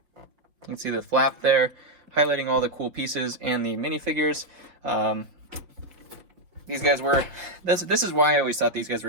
You can see the flap there, highlighting all the cool pieces and the minifigures. These guys were, this is why I always thought these guys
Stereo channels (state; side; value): late; left; 6.3 ms